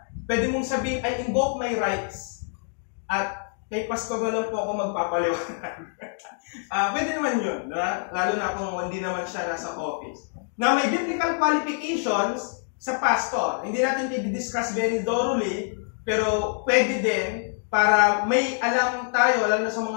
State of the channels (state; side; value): silent; right; digital silence